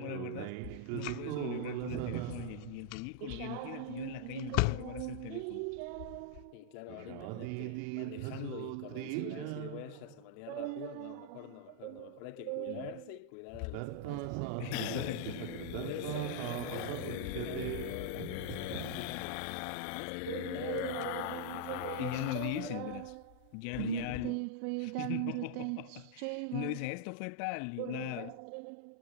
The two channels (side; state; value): both; different; correlation -0.01